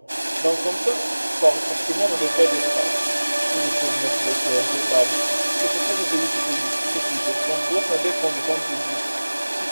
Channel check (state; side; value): inverted; both; correlation -1.00